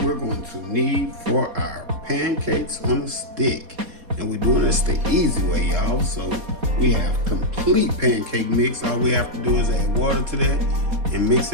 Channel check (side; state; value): left; late; 4.2 ms